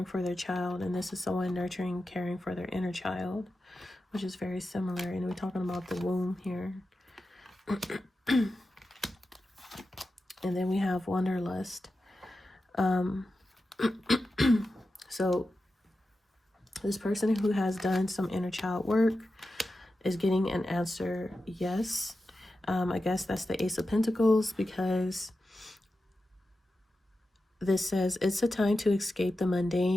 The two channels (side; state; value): both; normal; correlation 0.91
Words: for their child, and this is someone nurturing, caring for their inner child, which is very similar. And we're talking about the womb here. And then we have wanderlust. So this person who has done some inner child work is getting an answer yes. I guess that's the Ace of Pentacles, because this says it's a time to escape the